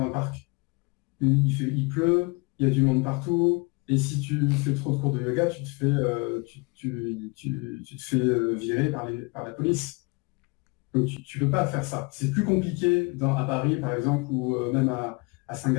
parc. Il pleut, il y a du monde partout, et si tu fais trop de cours de yoga, tu te fais virer par la police. Donc tu peux pas faire ça. C'est plus compliqué à Paris, par exemple, ou même à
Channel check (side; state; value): right; quieter; 29.0 dB